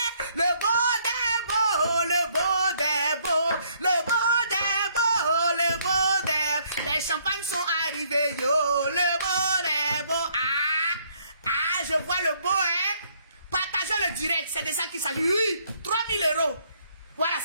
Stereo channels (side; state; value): both; inverted; correlation -0.67